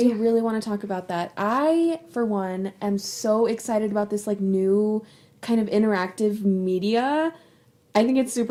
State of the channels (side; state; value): both; identical; correlation 1.00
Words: really want to talk about that. I, for one, am so excited about this like new kind of interactive media. I think it's